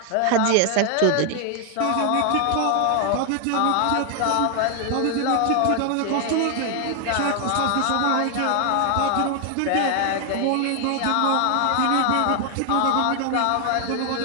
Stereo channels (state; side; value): different; both; correlation 0.00